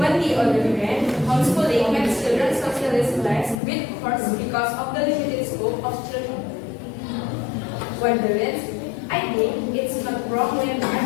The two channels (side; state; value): right; drops out; at 3.6 s